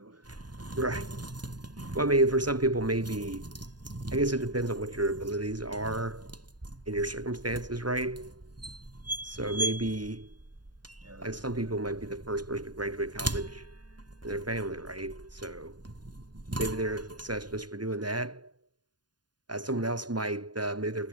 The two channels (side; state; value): left; late; 0.70 ms